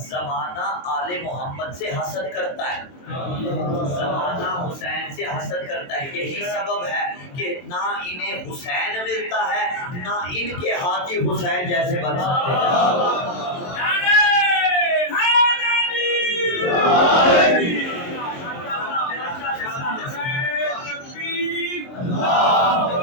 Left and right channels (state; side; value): late; right; 23 ms